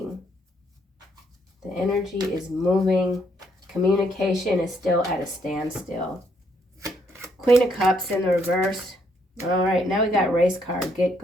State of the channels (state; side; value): normal; both; correlation 0.72